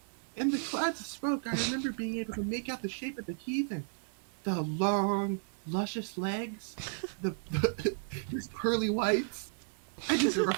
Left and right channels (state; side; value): silent; left; digital silence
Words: In the clouds of smoke, I remember being able to make out the shape of the heathen. The long, luscious legs, his pearly whites, and just a